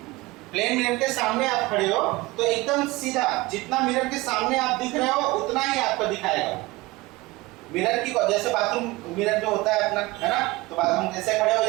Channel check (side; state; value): left; quieter; 21.0 dB